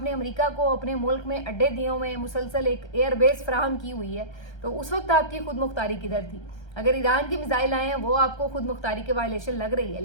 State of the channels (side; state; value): right; late; 1.3 ms